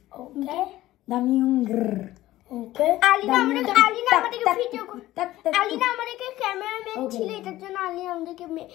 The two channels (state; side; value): quieter; right; 15.7 dB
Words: ওকে দামি উঙ্গর ওকে। আলিনা আমাদেরকে ভিডিও, আলিনা আমাদেরকে ক্যামেরাম্যান ছিল, এটার জন্য আলিনা আমাদেরকে